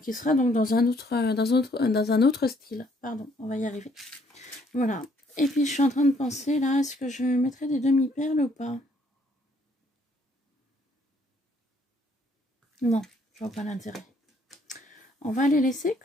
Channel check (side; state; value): both; normal; correlation 0.66